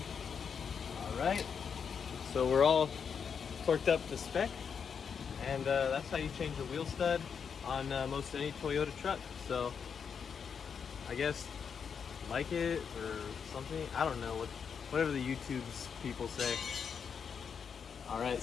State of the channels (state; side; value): quieter; right; 6.7 dB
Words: All right, so we're all torqued up to spec, and that's how you change the wheel stud on most any Toyota truck. So I guess like it or something, I don't know, whatever the YouTube's people say. All right,